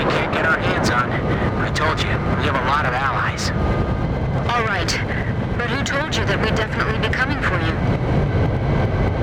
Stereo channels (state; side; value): identical; both; correlation 1.00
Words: can't get our hands on. I told you, we have a lot of allies. All right. But who told you that we'd definitely be coming for you?